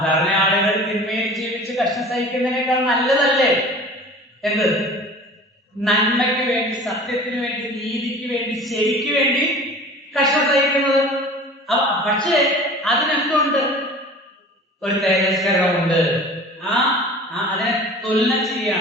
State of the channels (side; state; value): both; normal; correlation 0.42